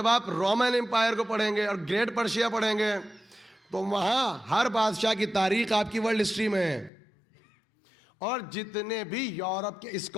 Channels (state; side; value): drops out; right; at 6.9 s